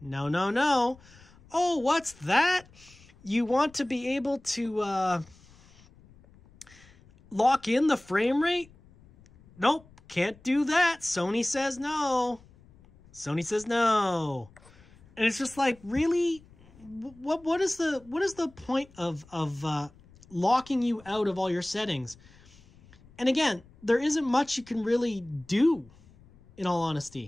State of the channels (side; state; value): left; noise; rumble, 26 dB below the sound